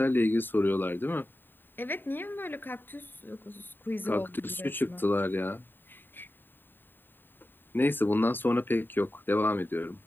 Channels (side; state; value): right; late; 0.094 ms